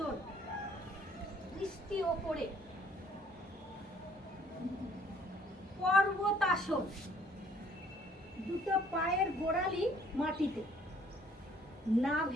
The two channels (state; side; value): normal; both; correlation 0.60